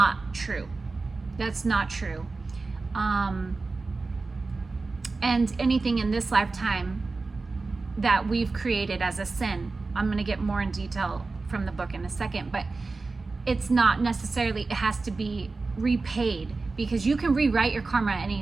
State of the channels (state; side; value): quieter; left; 3.8 dB